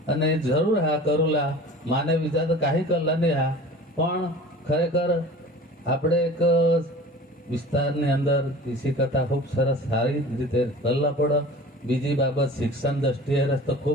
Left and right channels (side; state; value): both; normal; correlation 0.41